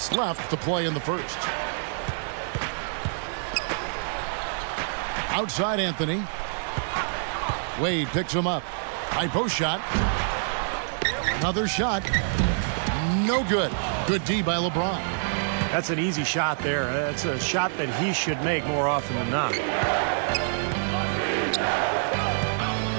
left to play in the first. Outside Anthony. Wade picks him up. High post shot. Another shot. No good. Good D by LeBron. That's an easy shot there. That's a shot that he should make more often than not.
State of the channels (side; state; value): left; silent; 61 dB below the other